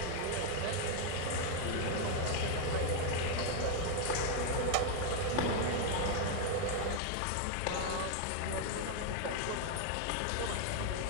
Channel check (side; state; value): both; different; correlation 0.00